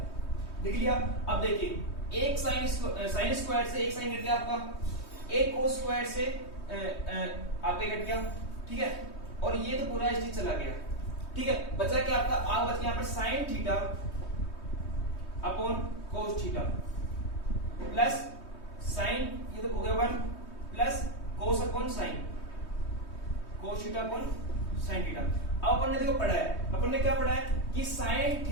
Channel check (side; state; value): right; late; 3.2 ms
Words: देख लिया। अब देखिए एक sine square से एक साइन कट गया आपका, एक कोस स्क्वायर से आपका कट गया, ठीक है, और ये तो पूरा चीज चला गया। ठीक है, बचा क्या आपका, आगे बच गया यहाँ पर sine theta upon cos theta plus sign, ये तो हो गया 1 plus cos upon sine, cos theta upon sine theta. अब अपन ने देखो पढ़ा है, अपन ने क्या पढ़ा है कि sine